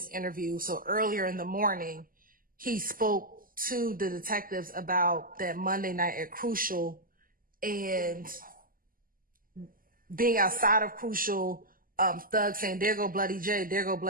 interview, so earlier in the morning, he spoke to the detectives about that Monday night at Crucial and being outside of Crucial, Thug saying, "There go Bloody J, there go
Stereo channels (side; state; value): left; late; 0.41 ms